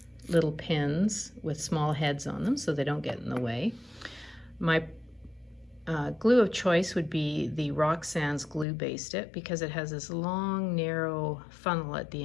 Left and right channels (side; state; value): right; drops out; at 8.7 s